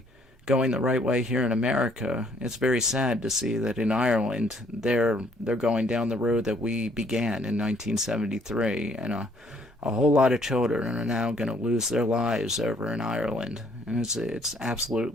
going the right way here in America, it's very sad to see that in Ireland they're going down the road that we began in 1973, and a whole lot of children are now going to lose their lives over in Ireland, and it's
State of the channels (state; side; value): normal; both; correlation 0.64